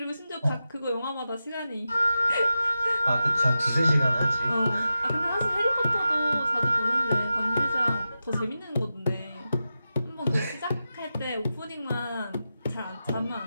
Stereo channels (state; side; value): inverted; both; correlation -0.91